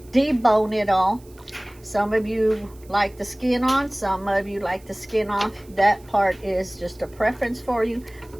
debone it all. Some of you like the skin on, some of you like the skin off. That part is just a preference for you.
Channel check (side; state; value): right; noise; hiss, 27 dB below the sound